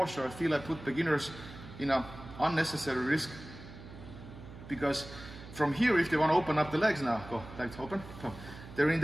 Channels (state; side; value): noise; right; hum, 15 dB below the sound